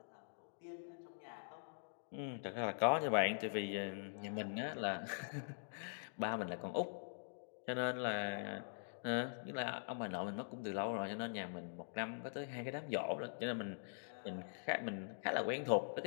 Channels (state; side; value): silent; right; digital silence